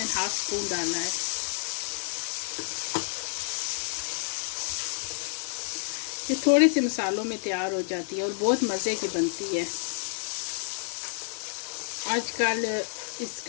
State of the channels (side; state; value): right; silent; digital silence